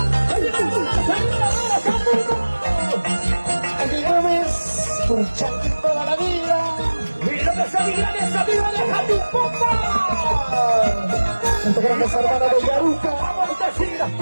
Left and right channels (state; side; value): inverted; both; correlation -1.00